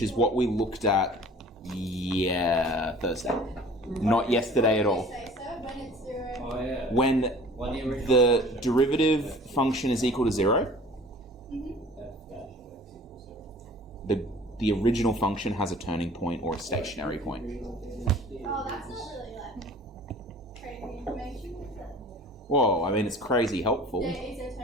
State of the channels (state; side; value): normal; both; correlation 0.47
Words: is what we looked at, Thursday, not yesterday at all. Say so when it's 0. Oh yeah. When the derivative function is equal to 0, the original function has a turning point or a stationary point. Oh, that's not really crazy information, is it? Whoa, I mean, it's crazy helpful. There is a